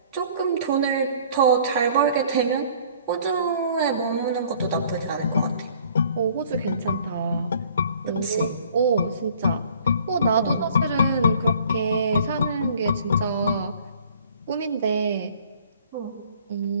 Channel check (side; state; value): both; inverted; correlation -0.55